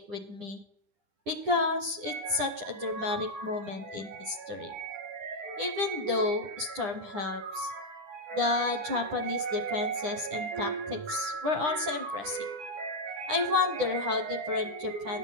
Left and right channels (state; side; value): late; left; 9.9 ms